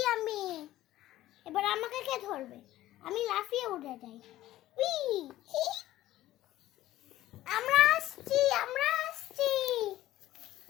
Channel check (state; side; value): quieter; right; 14.9 dB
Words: আমি, এবার আমাকে কে ধরবে? আমি লাফিয়ে উঠে যাই। আমরা আসছি, আমরা আসছি,